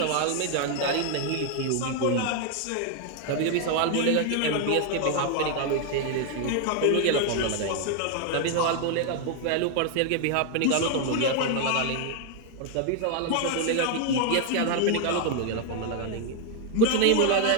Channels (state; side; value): different; both; correlation 0.01